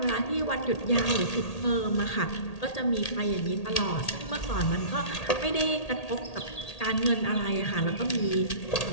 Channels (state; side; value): late; right; 1.8 ms